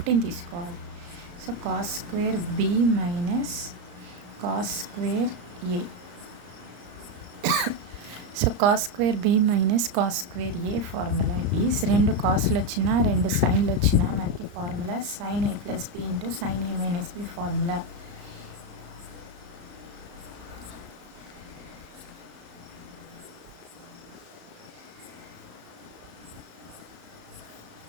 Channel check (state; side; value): late; left; 34 ms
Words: తీసుకోవాలి. So cos square B minus cos square A. So cos square B minus cos square A formula is, రెండు కాస్లు వచ్చినా రెండు సైన్లు వచ్చినా మనకి formula sin A plus B into sin A minus B formula.